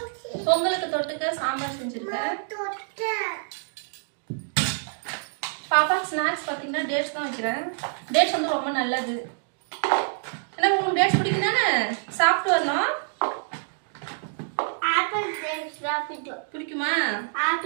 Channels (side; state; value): left; silent; digital silence